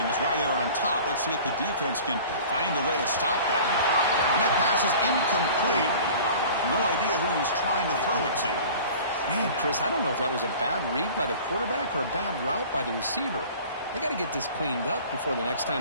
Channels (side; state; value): both; inverted; correlation -0.43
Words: is why they were on top. Let's see if the defense can find a way to stop that. And that pass is incomplete. No idea who he was trying to throw it to. Man, Chris, I don't know if that was a bad read by the quarterback or a bad route by the receiver. They got to get this cleaned up before the next